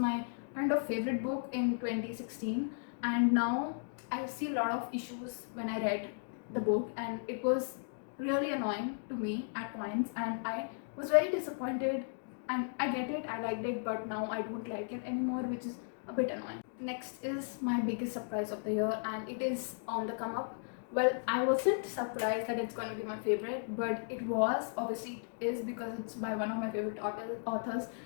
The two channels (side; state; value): right; silent; digital silence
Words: kind of favorite book in 2016, and now I see a lot of issues when I read the book, and it was really annoying to me at points, and I was very disappointed. And I get it, I liked it, but now I don't like it anymore, which is a bit annoying. Next is my biggest surprise of the year, and it is on the come up. Well, I wasn't surprised that it's going to be my favorite, but it was. Obviously it is because it's by one of my favorite authors,